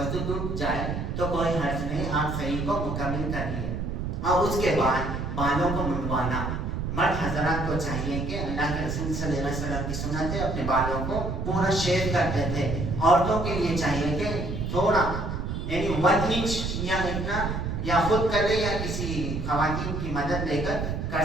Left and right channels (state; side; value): noise; right; rumble, 3 dB below the sound